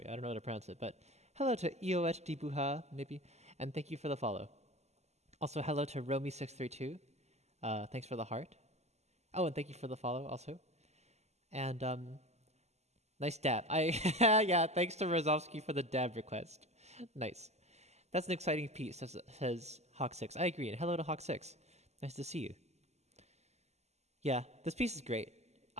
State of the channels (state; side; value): late; left; 0.32 ms